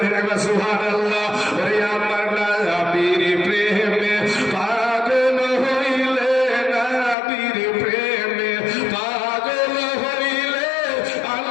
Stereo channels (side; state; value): right; drops out; at 7.2 s